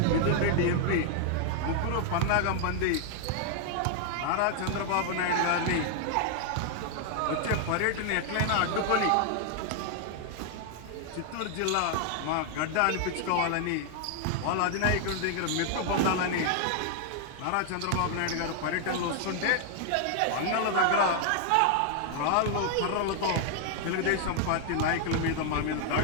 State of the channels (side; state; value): both; different; correlation 0.00